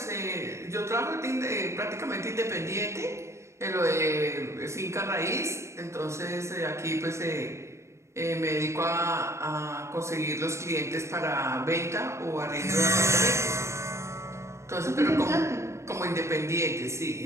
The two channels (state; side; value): late; left; 0.13 ms